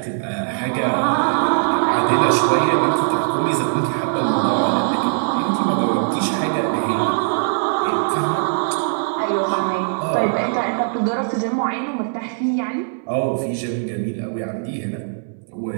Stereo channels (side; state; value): left; silent; digital silence